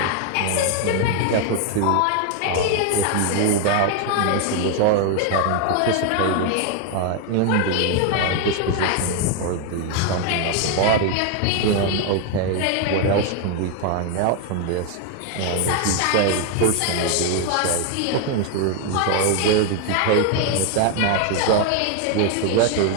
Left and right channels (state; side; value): different; both; correlation 0.01